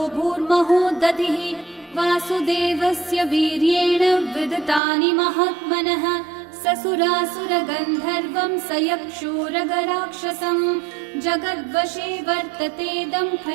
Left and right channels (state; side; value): drops out; left; at 4.8 s